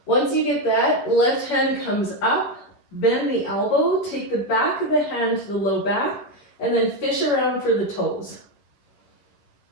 Once you get that, left hand comes up, bend the elbow, take the back of the hand to the low back, and then fish around for the toes.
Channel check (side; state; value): right; late; 11 ms